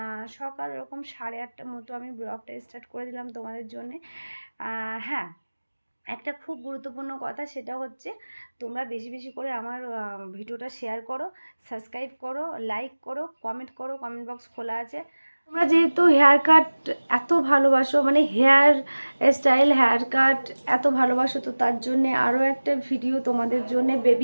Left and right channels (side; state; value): both; inverted; correlation -1.00